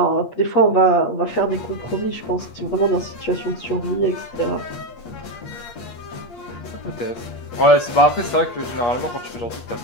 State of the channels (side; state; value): right; late; 8.5 ms